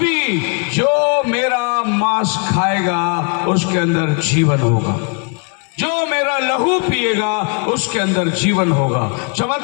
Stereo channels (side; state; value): right; quieter; 36.5 dB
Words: जो मेरा मांस खाएगा उसके अंदर जीवन होगा, जो मेरा लहू पिएगा उसके अंदर जीवन होगा।